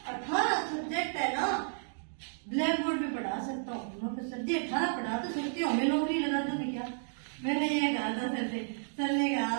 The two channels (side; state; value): left; silent; digital silence